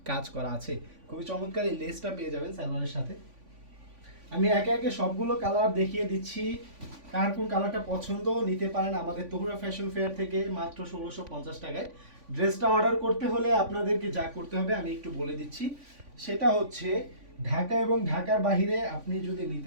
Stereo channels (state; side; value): late; left; 3.5 ms